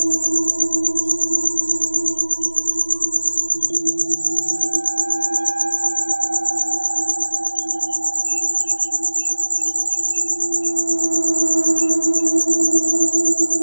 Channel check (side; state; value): both; inverted; correlation -1.00